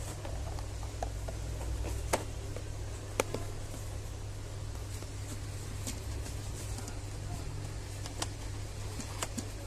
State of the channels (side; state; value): both; identical; correlation 1.00